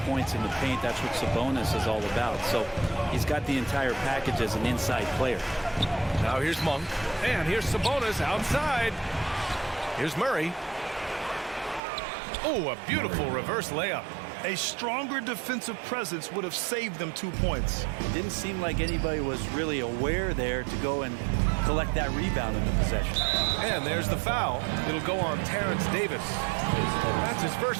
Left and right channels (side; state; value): left; drops out; at 11.8 s